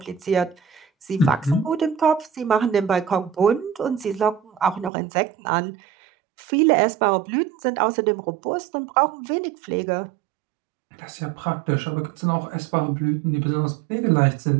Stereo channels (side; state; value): left; drops out; at 4.9 s